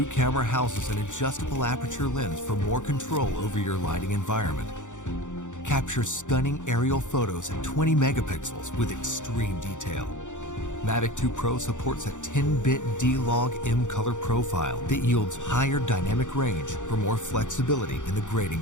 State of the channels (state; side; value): late; right; 0.85 ms